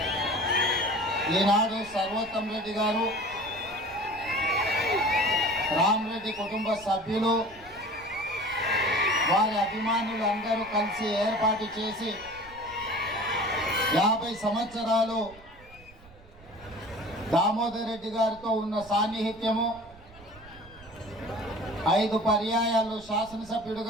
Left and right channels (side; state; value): right; noise; rumble, 23 dB below the sound